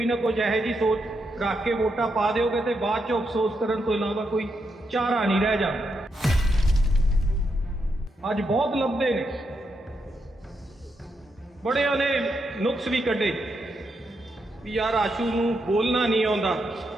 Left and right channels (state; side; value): normal; both; correlation 0.82